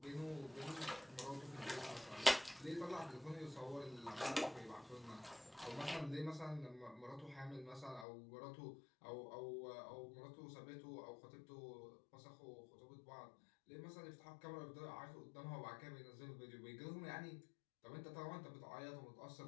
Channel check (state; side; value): drops out; right; at 8.1 s